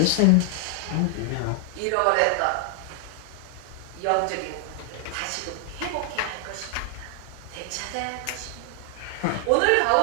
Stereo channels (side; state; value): both; different; correlation 0.00